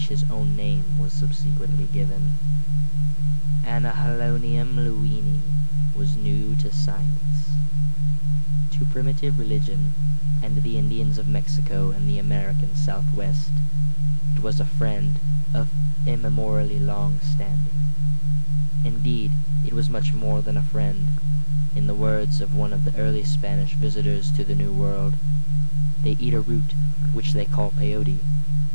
his own name was subsequently given. Anahalonium lewinii was new to science, to primitive religion, and the Indians of Mexico and the American Southwest. It was a friend of immemorially long standing. Indeed, it was much more than a friend. In the words of one of the early Spanish visitors to the New World, they eat a root which they call peyote,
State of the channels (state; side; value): inverted; both; correlation -1.00